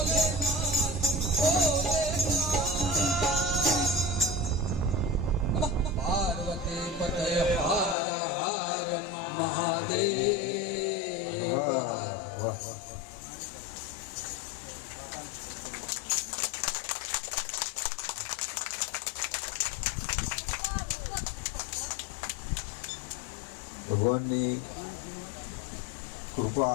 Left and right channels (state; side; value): drops out; right; at 8.0 s